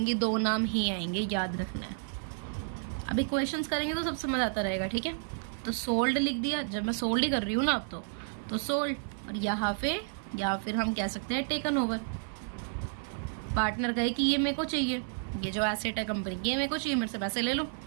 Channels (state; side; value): silent; left; 57 dB below the other